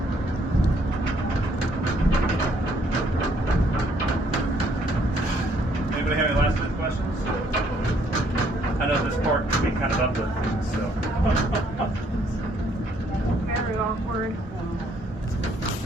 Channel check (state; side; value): normal; both; correlation 0.67